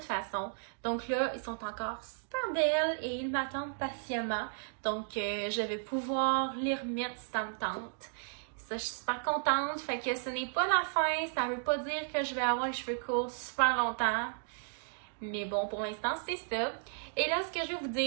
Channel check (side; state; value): left; silent; digital silence